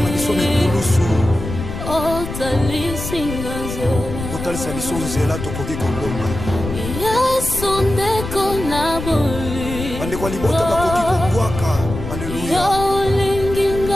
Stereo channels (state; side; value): noise; left; rumble, 7 dB below the sound